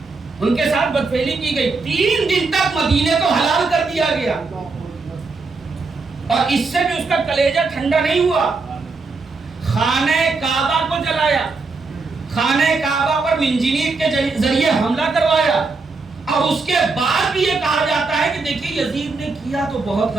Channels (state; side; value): quieter; left; 4.0 dB